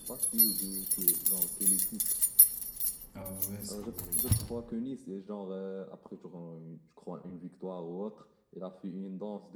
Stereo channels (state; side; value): identical; both; correlation 1.00